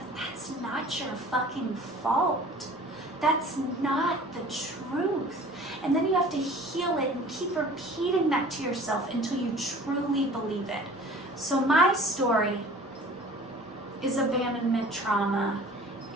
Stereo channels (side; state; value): both; normal; correlation 0.46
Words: that's not your fucking fault. That's not the truth. And then you have to heal it and keep repeating that to yourself until you truly believe it. So my story is abandonment trauma